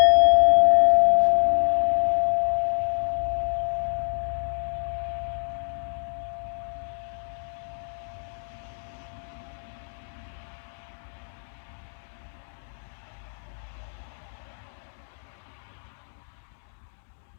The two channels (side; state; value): right; silent; digital silence